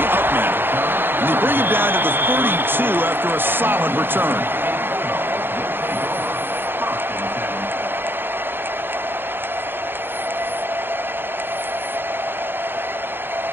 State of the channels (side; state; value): left; late; 0.10 ms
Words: up men. And they bring him down to the 32 after a solid return.